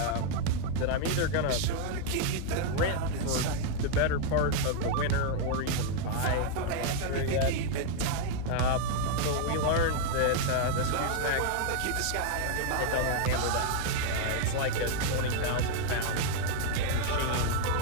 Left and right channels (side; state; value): both; different; correlation 0.00